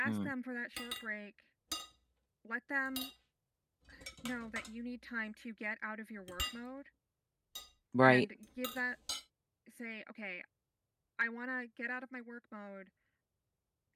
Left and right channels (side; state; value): both; identical; correlation 1.00